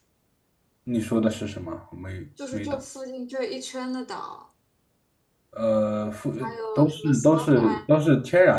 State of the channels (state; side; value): identical; both; correlation 1.00